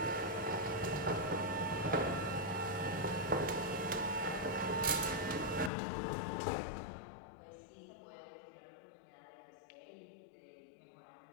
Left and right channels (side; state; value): right; drops out; at 5.7 s